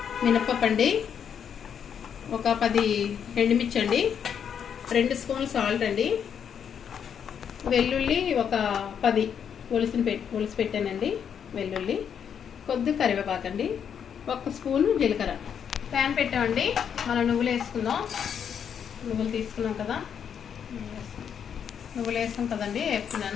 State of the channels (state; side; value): quieter; right; 7.9 dB